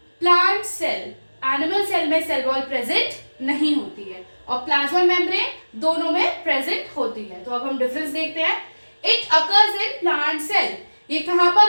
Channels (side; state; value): both; inverted; correlation -1.00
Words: plant cell. Animal cell में सेल वॉल प्रेजेंट नहीं होती है और प्लाज्मा मेम्ब्रेन दोनों में प्रेजेंट होती है। तो अब हम डिफरेंस देखते हैं। It occurs in plant cell. ये कहाँ